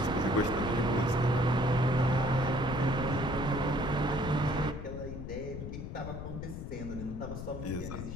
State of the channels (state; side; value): noise; left; rumble, 7 dB below the sound